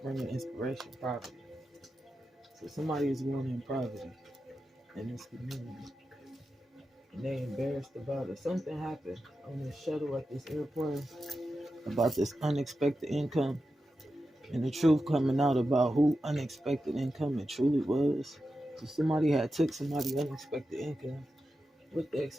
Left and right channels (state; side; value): normal; both; correlation 0.90